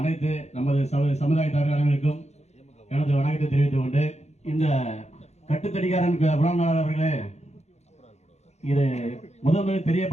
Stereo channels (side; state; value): right; late; 0.32 ms